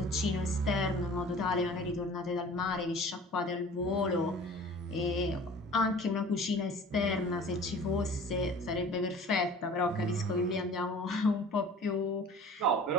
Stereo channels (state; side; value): normal; both; correlation 0.44